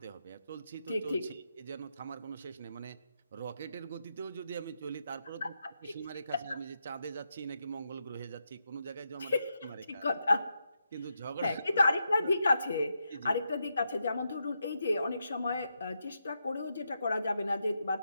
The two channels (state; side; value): inverted; both; correlation -0.84